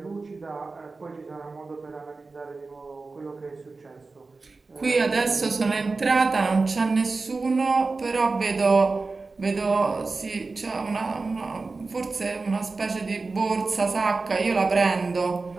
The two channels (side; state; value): left; quieter; 3.9 dB